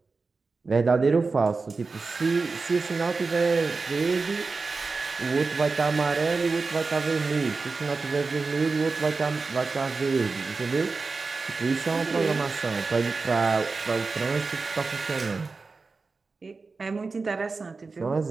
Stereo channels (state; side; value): quieter; left; 4.2 dB